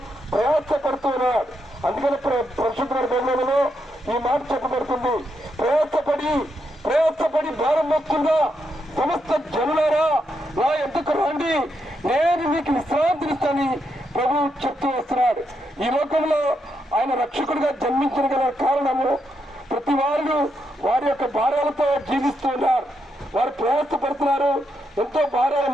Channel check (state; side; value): normal; both; correlation 0.81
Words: ప్రయాసపడుతూ ఉన్నాడు. అందుకని పరిశుద్ధ గ్రంథంలో ఈ మాట చెప్పబడుతుంది, ప్రయాసపడి భారం మోస్తుందా సమస్త జనులారా నా ఎందుకు రండి, నేను మీకు విశ్రాంతినిస్తానని ప్రభు చెప్తూ వస్తున్నాడు. ఈ లోకంలో ఆయన రక్షకుడిగా జన్మించిన గల కారణము ప్రతి వారు వారి యొక్క భారాలతో జీవిస్తూ ఉన్నారు. వారు ప్రయాసపడుతున్నారు, ఎంతో భారాలు